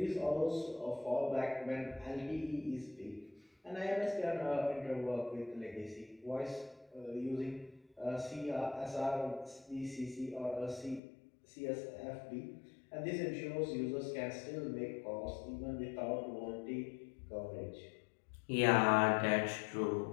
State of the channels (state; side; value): drops out; right; at 11.0 s